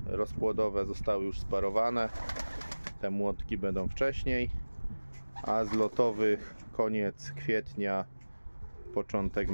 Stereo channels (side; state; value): both; inverted; correlation -1.00